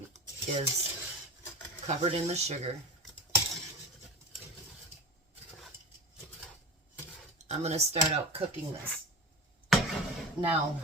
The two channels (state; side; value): normal; both; correlation 0.32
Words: is covered in the sugar, I'm going to start out cooking this. Now,